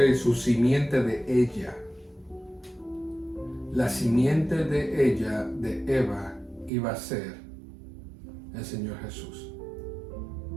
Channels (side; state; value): left; drops out; at 6.7 s